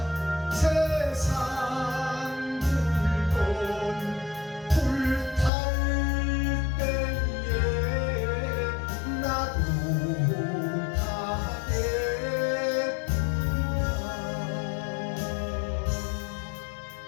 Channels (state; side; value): drops out; right; at 5.5 s